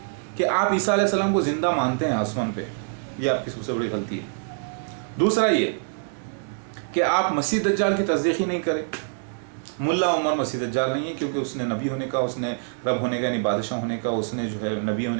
कि आप ईसा अलैहिस्सलाम को ज़िंदा मानते हैं आसमान पे, ये आपकी सबसे बड़ी गलती है। दूसरा ये कि आप मसीह दज्जाल की तस्दीक ही नहीं करें। मुल्ला उमर मसीह दज्जाल नहीं है, क्योंकि उसने नबी होने का, उसने रब होने का यानी बादशाह होने का, उसने जो है नबी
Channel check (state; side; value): silent; left; digital silence